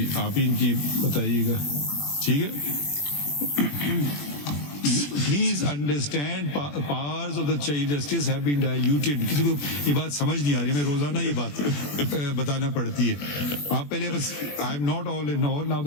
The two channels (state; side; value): late; right; 21 ms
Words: आप ही इनकी बताइएगा. ठीक है. Please understand, powers of the Chief Justice have been diluted. किसी को ये बात समझ नहीं आ रही, हमें रोजाना ये बात बताना पड़ती है. आप पहले बस, I am not all in all. Now